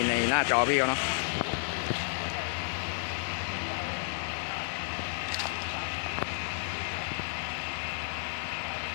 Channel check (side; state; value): right; silent; digital silence